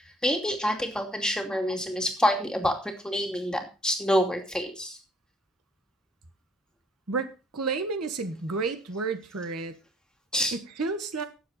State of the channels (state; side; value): normal; both; correlation 0.63